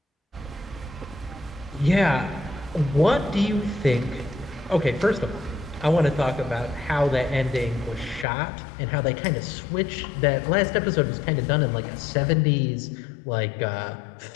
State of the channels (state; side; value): drops out; right; at 8.2 s